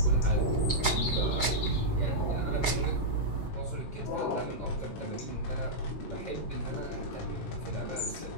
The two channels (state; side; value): late; right; 13 ms